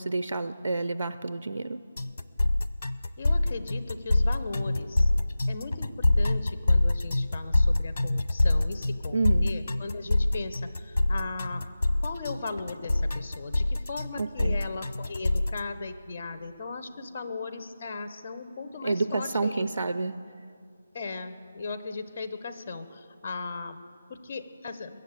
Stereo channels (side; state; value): both; inverted; correlation -0.95